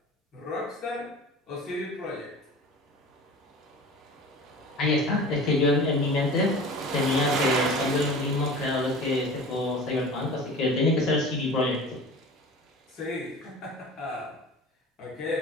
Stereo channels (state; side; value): normal; both; correlation 0.38